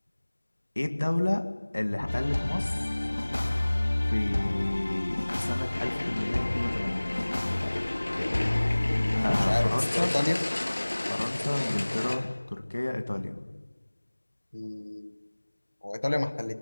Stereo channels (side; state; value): both; inverted; correlation -1.00